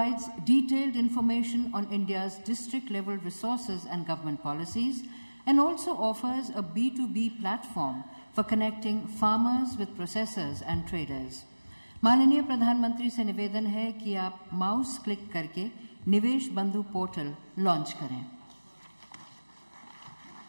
detailed information on India's district-level resources and government policies, and also offers a B2B platform for connecting farmers with processors and traders. माननीय प्रधानमंत्री से निवेदन है कि आप mouse click करके निवेश बंधु पोर्टल लॉन्च करें.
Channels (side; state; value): both; inverted; correlation -1.00